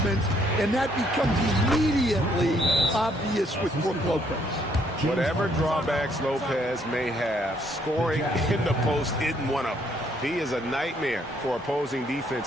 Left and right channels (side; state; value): both; normal; correlation 0.68